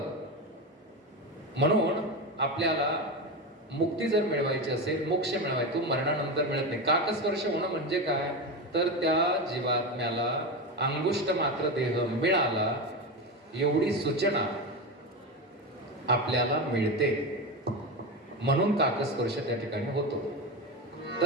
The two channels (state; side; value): normal; both; correlation 0.19